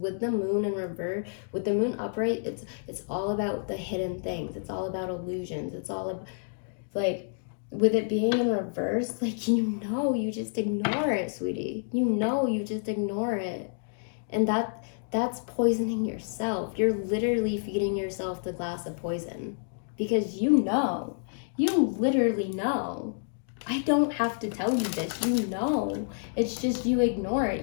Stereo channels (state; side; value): silent; right; digital silence